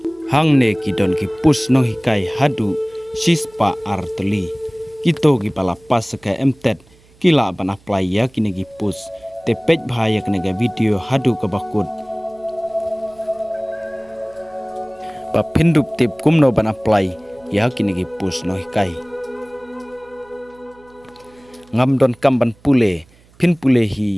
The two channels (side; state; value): right; noise; hum, 29 dB below the sound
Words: hangne ki don ki push no hikai hadu sispa artli kito ki palapas ka MTET kila ban apply ya kini ki push te page bhaya kene ga video hadu ka bakut pa pindup tip kumno ban apply ya kini ki push no hikai ngam don kam ban pule pin pule